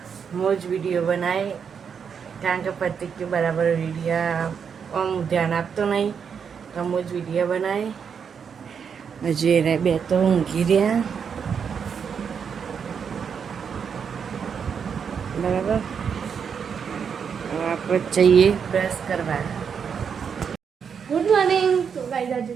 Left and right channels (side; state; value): left; quieter; 6.8 dB